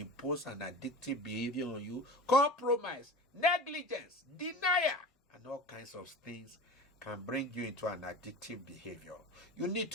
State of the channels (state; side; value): normal; both; correlation 0.34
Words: an addictive behavior on you. Compromise, negligence, denial, and all kinds of things can bring you into an addictive behavior. You need